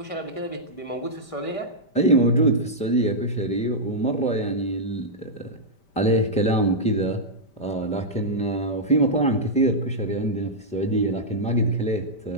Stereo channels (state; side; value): late; right; 5.1 ms